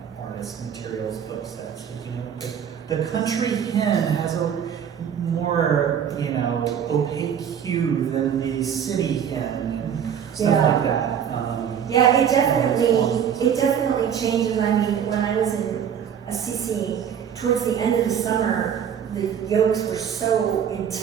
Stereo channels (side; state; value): left; quieter; 8.4 dB